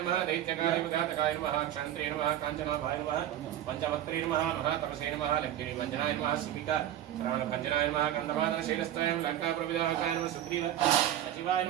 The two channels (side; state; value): left; quieter; 12.0 dB